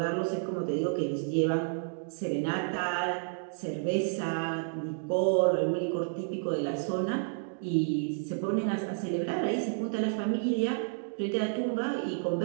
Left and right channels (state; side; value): silent; left; digital silence